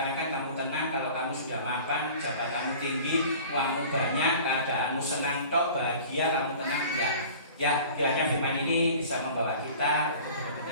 kamu tenang kalau kamu sudah mapan, jabatanmu tinggi, uangmu banyak, keadaanmu senang tok, bahagia, kamu tenang, enggak. Ya, kiranya firman ini bisa membawa kita untuk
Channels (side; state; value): both; inverted; correlation -0.43